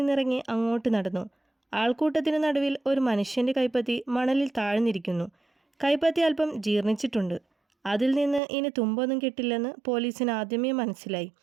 അങ്ങോട്ട് നടന്നു. ആൾക്കൂട്ടത്തിനു നടുവിൽ ഒരു മനുഷ്യൻ്റെ കൈപ്പത്തി മണലിൽ താഴ്ന്നിരിക്കുന്നു. കൈപ്പത്തി അല്പം ജീർണിച്ചിട്ടുണ്ട്. അതിൽ നിന്ന് ഇനി തുമ്പൊന്നും കിട്ടില്ലെന്ന് പോലീസിന് ആദ്യമേ മനസ്സിലായി.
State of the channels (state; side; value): drops out; left; at 8.4 s